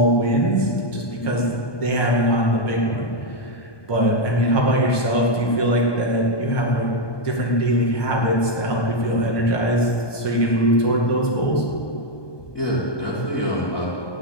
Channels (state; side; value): late; right; 1.2 ms